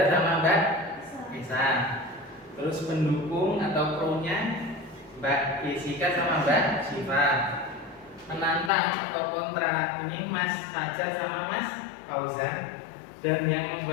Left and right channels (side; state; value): right; drops out; at 8.7 s